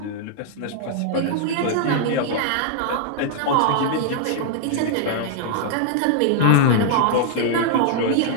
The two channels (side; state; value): both; different; correlation -0.01